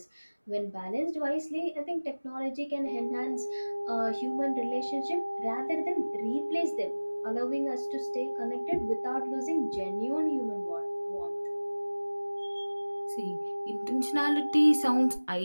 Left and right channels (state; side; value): inverted; both; correlation -1.00